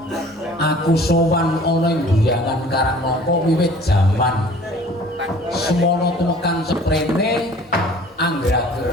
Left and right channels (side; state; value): both; normal; correlation 0.49